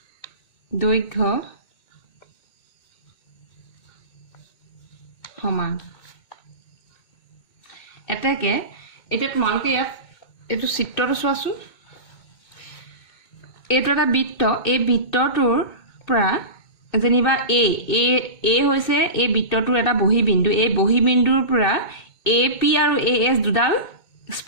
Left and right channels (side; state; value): right; late; 2.2 ms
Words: দৈৰ্ঘ্য সমান এতেকে এটা তোমালোকে ইয়াত এটো চিত্ৰটো চোৱাচোন এইটো এটা বৃত্ত এই বৃত্তটোৰ পৰা যেনিবা এ হৈছে এই বৃত্তটোৰ এটা বহিবিন্দু এই বহিবিন্দুৰ পৰা AP আৰু AS দুডাল